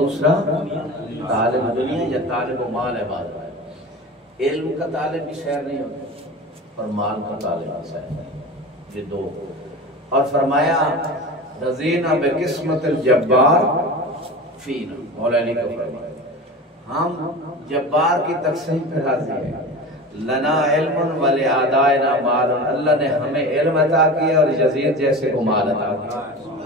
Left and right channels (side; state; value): both; normal; correlation 0.32